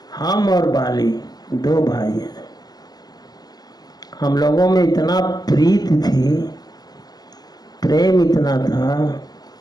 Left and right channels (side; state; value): right; late; 0.19 ms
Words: हम और बाली दो भाई हैं, हम लोगों में इतना प्रीत थी, प्रेम इतना था